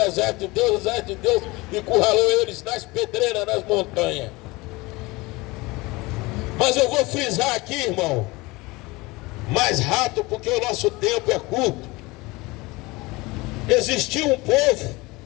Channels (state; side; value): quieter; right; 22.7 dB